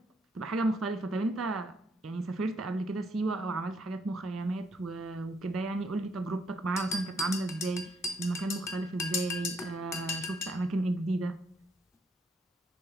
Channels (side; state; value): both; normal; correlation 0.73